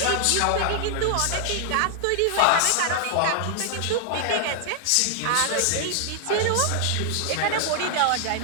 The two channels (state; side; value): different; both; correlation 0.00